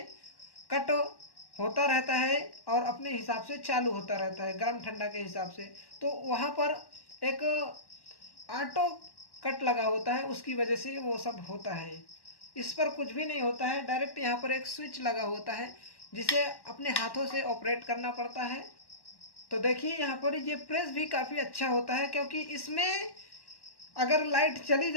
कट होता रहता है और अपने हिसाब से चालू होता रहता है गर्म ठंडा के हिसाब से। तो वहाँ पर एक ऑटो कट लगा होता है, उसकी वजह से वो सब होता है। इस पर कुछ भी नहीं होता है, डायरेक्ट यहाँ पर एक स्विच लगा होता है जिसे अपने हाथों से ऑपरेट करना पड़ता है। तो देखिए यहाँ पर ये प्रेस भी काफ़ी अच्छा होता है, क्योंकि इसमें अगर लाइट चली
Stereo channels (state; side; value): late; right; 1.1 ms